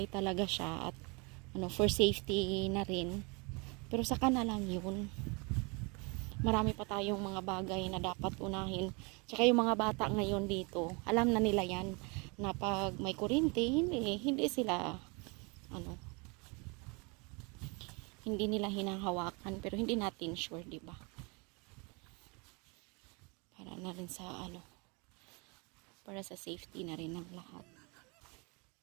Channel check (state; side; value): quieter; left; 30.4 dB